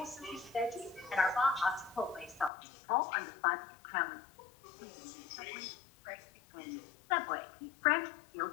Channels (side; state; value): right; drops out; at 2.5 s